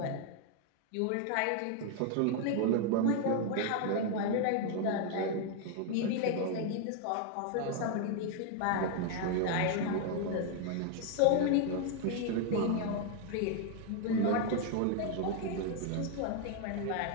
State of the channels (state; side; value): different; both; correlation 0.00